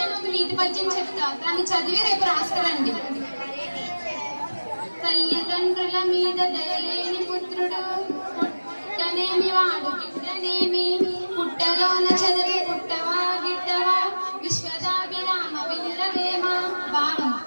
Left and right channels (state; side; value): inverted; both; correlation -1.00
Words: ఒక నీతి పద్యం చెప్తా, దాన్ని చదివి రేపు రాస్తారండి. తల్లిదండ్రుల మీద దయలేని పుత్రుడు పుట్టనేమి వాడు గిట్టనేమి, పుట్టలోన చదివి పుట్టవా గిట్టవా విశ్వదాభిరామ వినురవేమ. భావం: